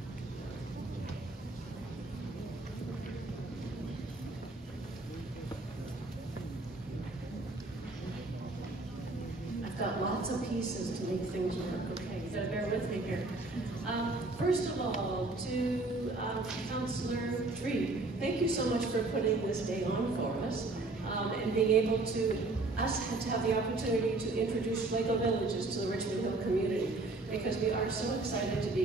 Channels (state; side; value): quieter; left; 3.2 dB